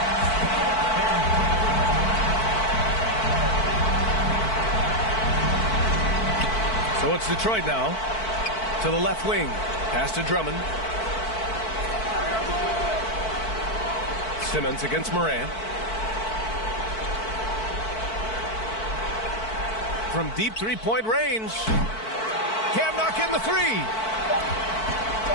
So it's Detroit now. To the left wing. Pass to Drummond. Simmons against Moran. From deep 3-point range. Can't knock in the 3.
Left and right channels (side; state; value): right; late; 4.5 ms